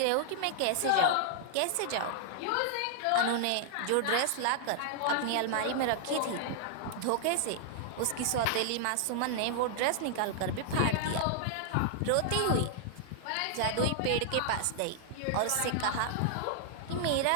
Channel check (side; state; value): both; different; correlation -0.01